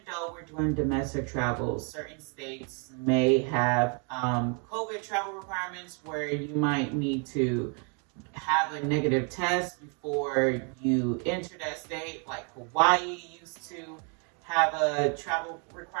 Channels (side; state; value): left; quieter; 37.8 dB